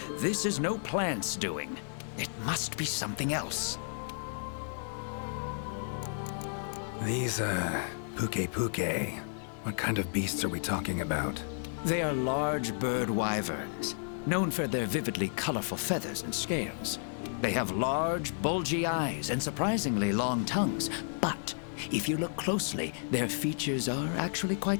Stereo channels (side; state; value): right; silent; digital silence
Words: This is no plant's doing. It must be something else. These, Puke. What kind of beasts are we talking about? They are large bird wyverns, known for their vividly colorful feathers and scales. They have large, bulgy eyes and surprisingly long tongues, but if you look closely, their features are actually